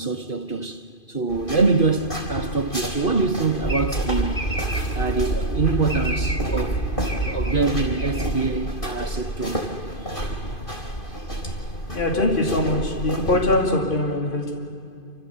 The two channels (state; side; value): late; right; 2.5 ms